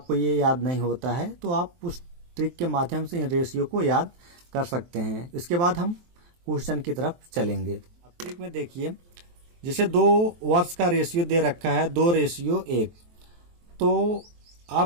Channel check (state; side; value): late; left; 23 ms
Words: ये याद नहीं होता है तो आप उस ट्रिक के माध्यम से इन रेशियो को याद कर सकते हैं। इसके बाद हम क्वेश्चन की तरफ चलेंगे। अब ट्रिक में देखिए, जैसे 2 वर्ष का रेशियो दे रखा है 2:1, तो